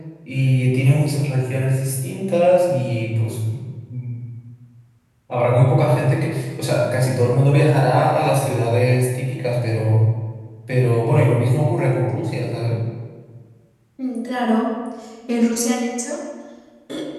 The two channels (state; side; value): identical; both; correlation 1.00